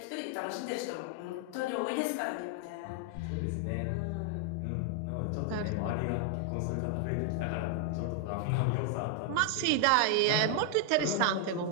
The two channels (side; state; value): both; different; correlation 0.00